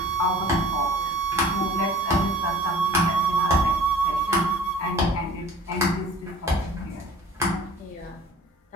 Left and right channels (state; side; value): normal; both; correlation 0.46